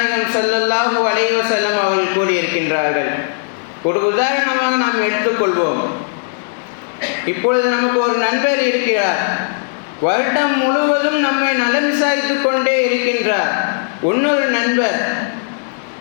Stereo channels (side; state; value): right; silent; digital silence